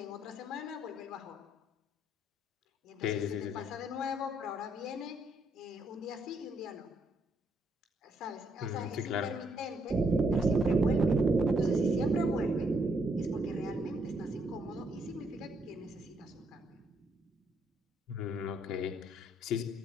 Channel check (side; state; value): both; normal; correlation 0.73